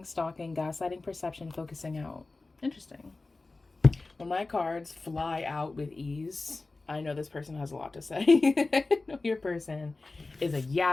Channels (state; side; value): quieter; right; 3.4 dB